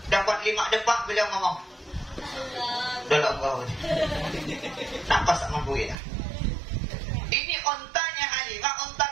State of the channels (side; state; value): left; drops out; at 6.0 s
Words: dapat 5 depak, beliau ngomong, dalam kau nampak tak mampu ya. Ini ontanya Halimah, onta